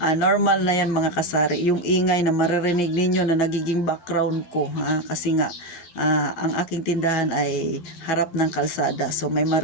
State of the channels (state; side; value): late; right; 11 ms